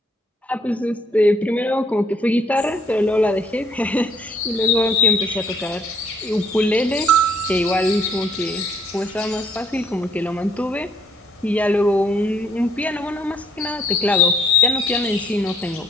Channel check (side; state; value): both; normal; correlation 0.64